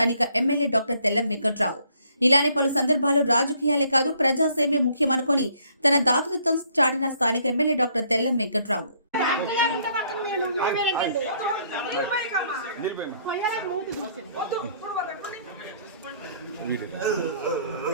ఎమ్మెల్యే డాక్టర్ తెల్లం వెంకట్రావు. ఇలానే పలు సందర్భాలు రాజకీయాలే కాదు ప్రజాసేవే ముఖ్యమనుకొని తన దాతృత్వం చాటిన స్థానిక ఎమ్మెల్యే డాక్టర్ తెల్లం వెంకట్రావు.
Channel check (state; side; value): inverted; both; correlation -0.65